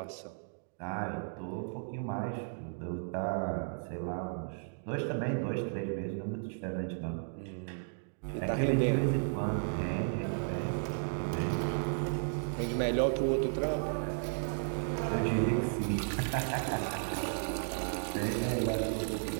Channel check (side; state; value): left; silent; digital silence